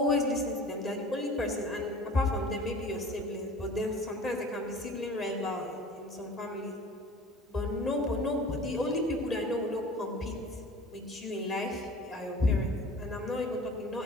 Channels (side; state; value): both; normal; correlation 0.42